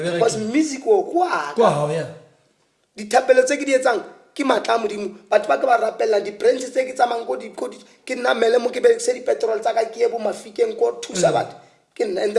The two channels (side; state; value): both; identical; correlation 1.00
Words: because music o kwaka dithapelo tse ke di etsang ke matla a modimo batho ba ke ba rapella di-brands tse ke tsamang ke namele mo ke berekise dipetrol tsa ka ke ye bo mafikeng ko thusa batho ke nna and